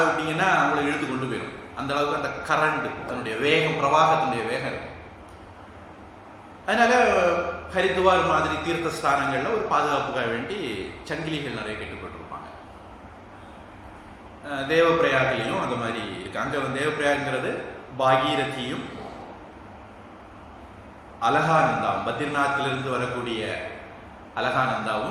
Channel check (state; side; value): identical; both; correlation 1.00